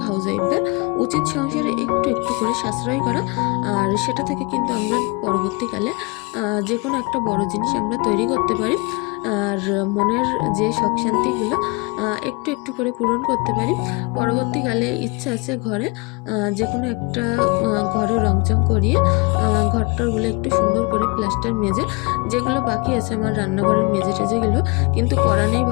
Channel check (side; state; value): right; quieter; 28.3 dB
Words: হাউসওয়াইফদের উচিত সংসারে একটু একটু করে সাশ্রয় করা। আর সেটা থেকে কিন্তু আমরা পরবর্তীকালে যে কোনো একটা বড় জিনিস আমরা তৈরি করতে পারি, আর মনের যে শখ শান্তিগুলো একটু একটু করে পূরণ করতে পারি। পরবর্তীকালে ইচ্ছা আছে ঘরে যে কোনো একটা ঘরে রংচং করিয়ে ঘরটারগুলো একটু সুন্দর করে প্লাস্টার মেজে, যেগুলো বাকি আছে আমার রান্নাঘরের মেজে টেজেগুলো কিন্তু করা নেই,